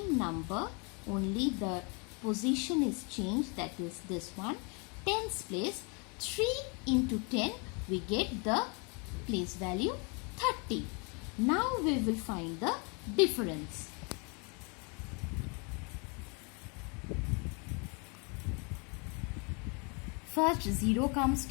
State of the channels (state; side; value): quieter; right; 33.6 dB